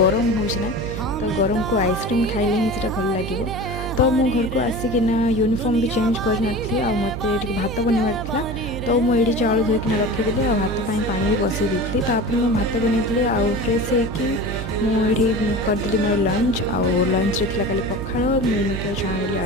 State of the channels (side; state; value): right; noise; hum, 7 dB below the sound